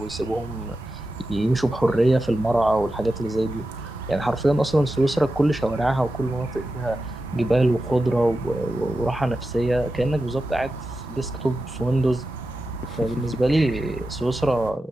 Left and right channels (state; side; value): normal; both; correlation 0.91